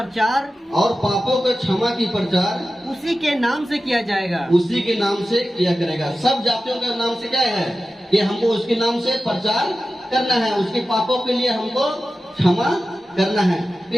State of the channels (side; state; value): both; normal; correlation 0.94